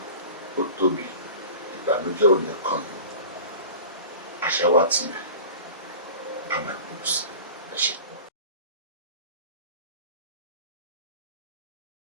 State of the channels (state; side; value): inverted; both; correlation -0.37